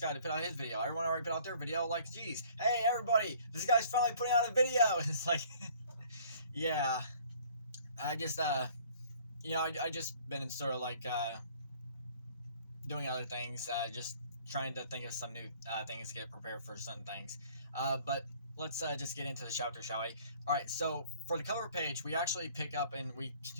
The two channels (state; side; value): inverted; both; correlation -0.55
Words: to put out his video? Everyone already put out their video, like, geez, hey everybody, this guy's finally putting out a video. It's like, yeah, I just I just been sort of like doing other things, just trying to think of some new things to get prepared for certain things. But let's just get into the chapter, shall we? All right, so for the cover page, we actually pick up and we